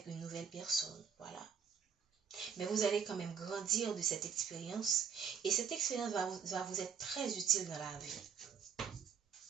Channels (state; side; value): quieter; left; 7.1 dB